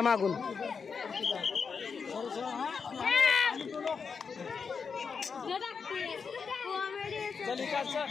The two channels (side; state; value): right; quieter; 5.7 dB